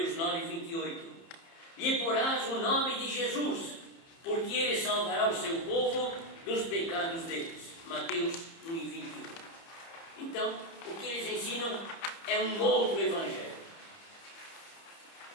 9:28, lhe porás o nome de Jesus, porque ele salvará o seu povo dos pecados deles. Mateus 1:21. Então, o que eles ensinam é um outro evangelho.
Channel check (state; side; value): late; right; 30 ms